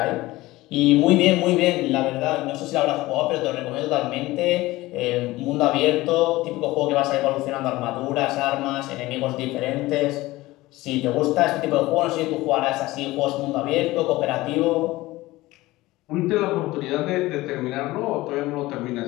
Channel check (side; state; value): right; quieter; 18.8 dB